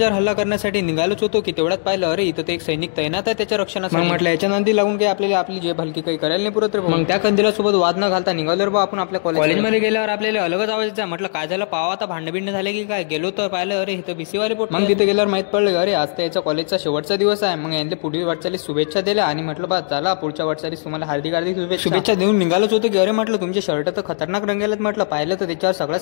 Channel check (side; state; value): right; silent; digital silence